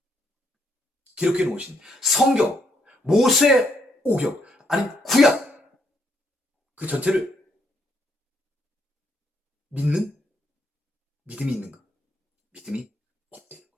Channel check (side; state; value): both; normal; correlation 0.74